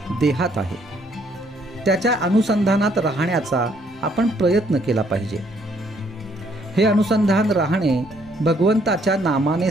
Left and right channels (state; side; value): normal; both; correlation 0.67